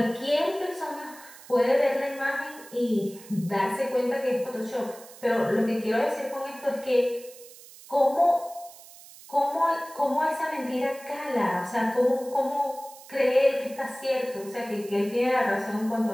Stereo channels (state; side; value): noise; right; hiss, 19 dB below the sound